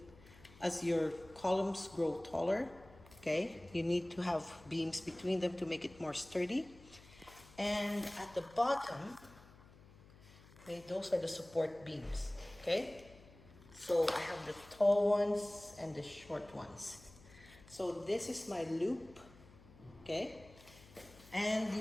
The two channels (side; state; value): left; noise; hum, 22 dB below the sound